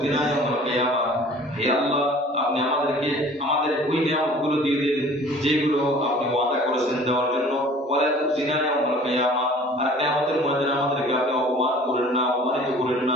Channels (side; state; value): both; normal; correlation 0.48